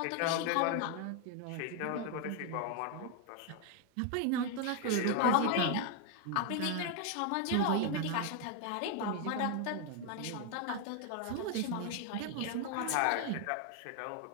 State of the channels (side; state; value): both; different; correlation 0.01